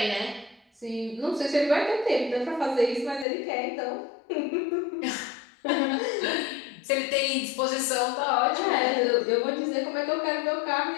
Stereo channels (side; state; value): right; drops out; at 3.2 s